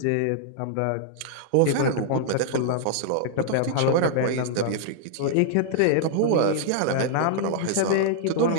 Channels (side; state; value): both; different; correlation -0.01